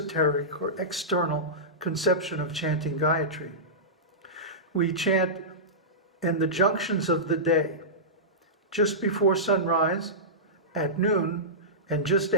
or external conception of chanting Gayatri, we chant in the junctions of the day, just before sunrise, at noon, and just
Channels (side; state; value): both; normal; correlation -0.16